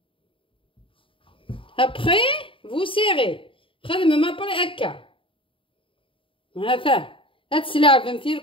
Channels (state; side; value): late; right; 0.25 ms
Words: après vous serrez خدمه ما بري هكا. هذا هاد السلعه فهمتي